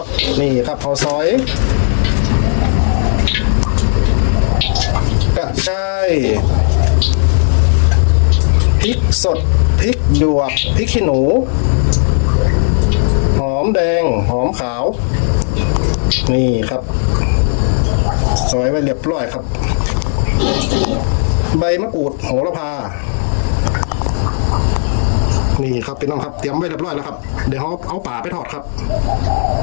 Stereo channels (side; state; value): right; silent; digital silence